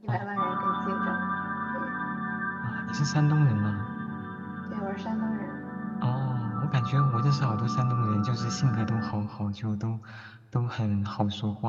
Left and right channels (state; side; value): identical; both; correlation 1.00